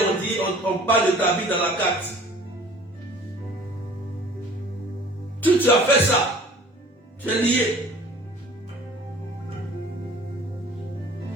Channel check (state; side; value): normal; both; correlation 0.48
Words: dit, on parle de ta vie dans la carte. Tu as fait ça. Tu es lié.